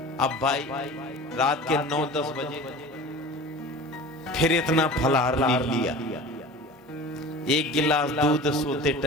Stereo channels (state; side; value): normal; both; correlation 0.38